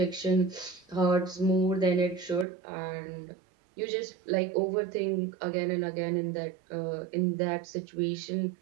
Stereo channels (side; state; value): left; drops out; at 2.5 s